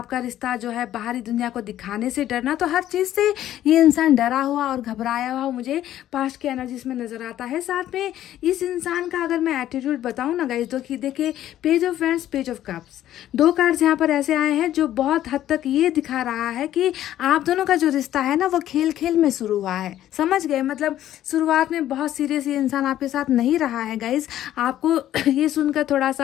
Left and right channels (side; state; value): right; quieter; 12.4 dB